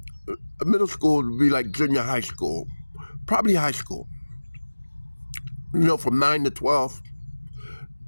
Middle school would be like junior high school, probably high school, from 9 to 12.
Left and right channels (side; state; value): both; inverted; correlation -1.00